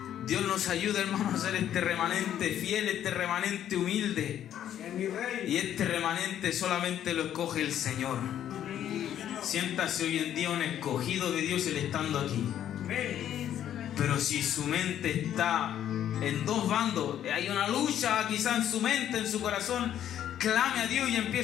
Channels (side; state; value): right; quieter; 10.7 dB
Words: Dios nos ayuda, hermanos, a ser este remanente fiel, este remanente humilde. Y este remanente solamente lo escoge el Señor. Siéntase hoy en día un escogido de Dios, Él estando aquí. Pero si su mente está en dos bandos, hay una lucha quizá en su mente, en su corazón, clame a Dios y